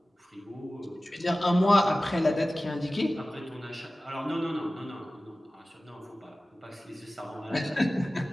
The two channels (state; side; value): normal; both; correlation 0.97